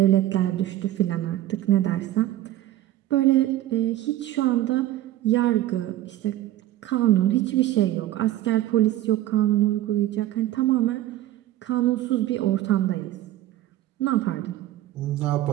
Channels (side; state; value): left; quieter; 14.2 dB